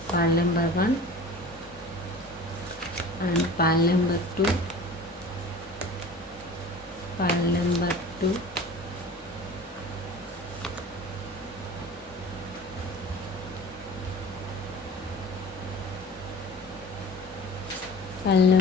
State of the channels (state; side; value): normal; both; correlation 0.40